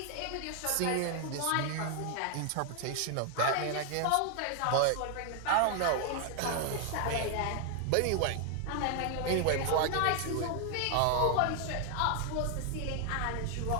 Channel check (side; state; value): both; different; correlation 0.00